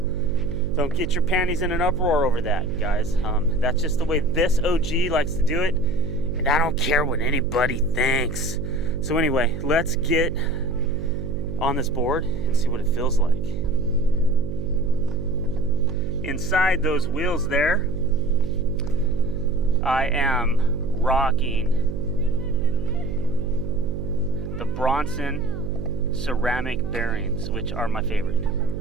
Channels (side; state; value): right; noise; hum, 7 dB below the sound